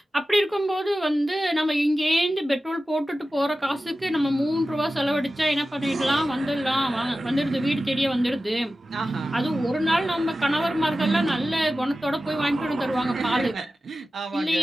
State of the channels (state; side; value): normal; both; correlation 0.94